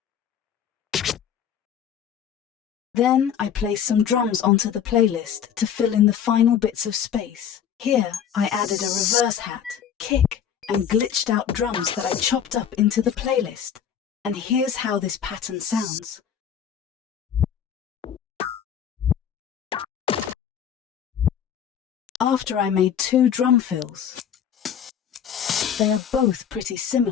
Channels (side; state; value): right; quieter; 8.6 dB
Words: Then I placed some drums onto the playlist to fill in the final bits of space. Here I added a reverse hat, kick, and glitched out drums that I chopped up into the playlist. And here's how this pattern sounds. After I made 2 drum fills. They are both pretty